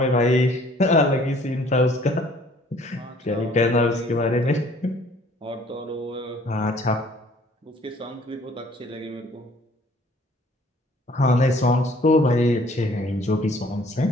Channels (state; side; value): normal; both; correlation 0.57